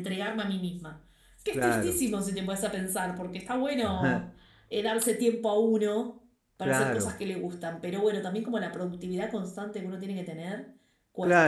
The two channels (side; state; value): both; identical; correlation 1.00